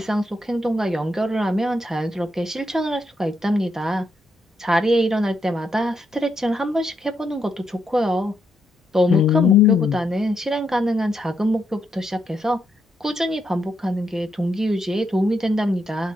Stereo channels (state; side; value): normal; both; correlation 0.79